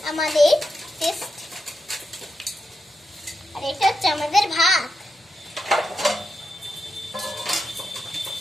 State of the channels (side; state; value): both; normal; correlation 0.86